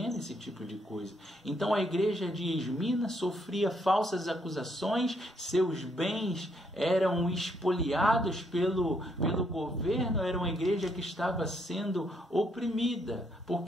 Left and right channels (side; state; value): both; normal; correlation 0.73